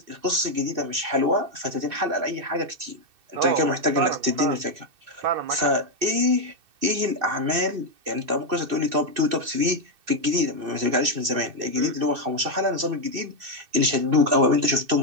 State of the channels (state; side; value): late; left; 2.6 ms